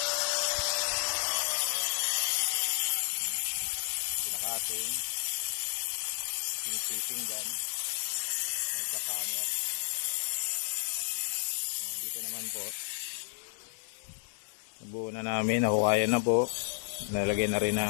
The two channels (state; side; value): silent; right; digital silence